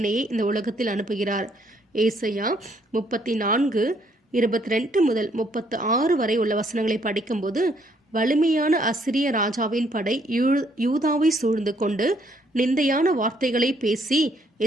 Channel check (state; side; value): normal; both; correlation 0.68